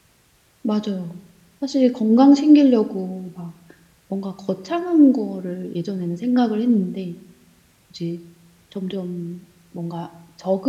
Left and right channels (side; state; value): both; identical; correlation 1.00